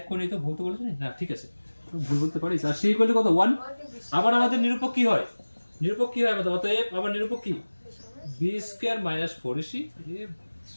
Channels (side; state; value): both; inverted; correlation -1.00